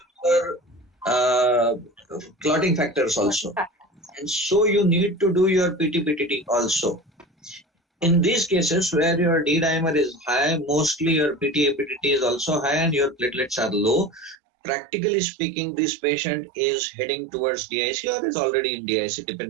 your clotting factors also. And so you need to do your PT-PTT also. In these cases where your D-dimer is high, mostly your PT-PTT is also high and your platelets are low. Practically speaking, this patient is heading towards DIC or is already in DIC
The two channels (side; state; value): left; drops out; at 14.4 s